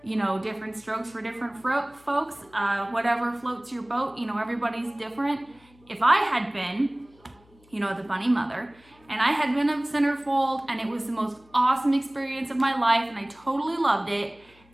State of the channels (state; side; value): noise; left; hum, 30 dB below the sound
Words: different strokes for different folks. Whatever floats your boat, everybody's different. If I had been, the bunny mother, and I had been a Centerfold, and it was the most awesome experience of my life, and I totally loved it,